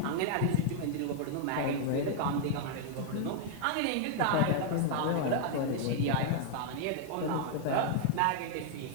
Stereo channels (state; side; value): different; both; correlation 0.00